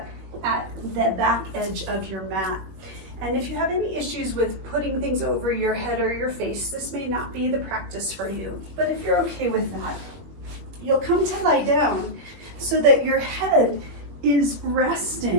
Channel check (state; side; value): late; left; 21 ms